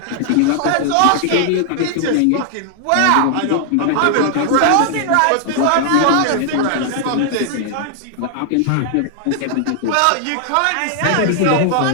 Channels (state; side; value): different; both; correlation 0.00